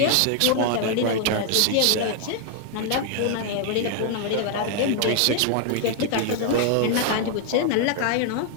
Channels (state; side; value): different; both; correlation 0.00